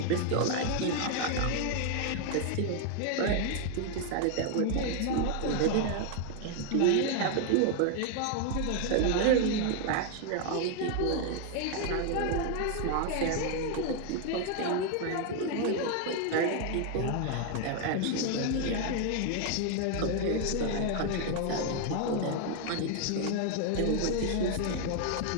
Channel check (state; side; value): different; both; correlation 0.00